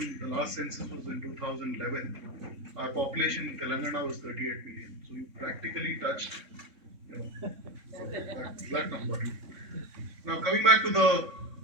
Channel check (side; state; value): left; late; 3.6 ms